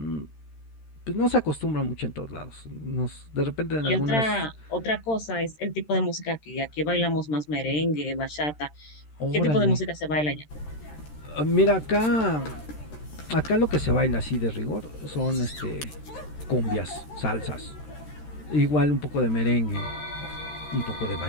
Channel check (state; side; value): late; right; 13 ms